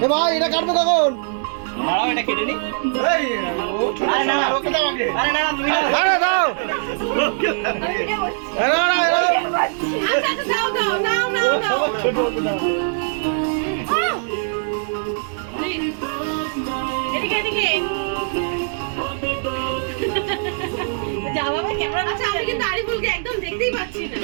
ভাই এটা কাটবো কখন? দাঁড়াও এটা কেটে নি। আরে না ওকে দাও আগে। আরে না তুমি আরে দাও। আরে না আচ্ছা দাও দাও নাও নাও নাও ছোট ছোট দাও। এদিকে এদিকে যা বাবা ক্যামেরা। আচ্ছা আমি কিন্তু আরিফুলকে একদম দেখতেই পাচ্ছি না।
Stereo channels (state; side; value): silent; left; digital silence